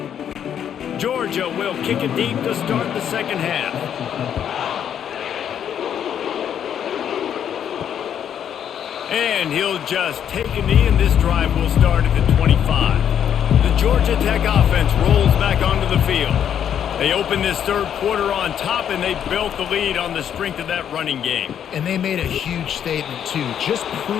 Georgia will kick it deep to start the 2nd half. And he'll just take a knee, and this drive will start at the 25. The Georgia Tech offense rolls back onto the field. They opened this 3rd quarter on top, and they built the lead on the strength of that running game. And they made a huge statement, too, just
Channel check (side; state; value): right; quieter; 9.1 dB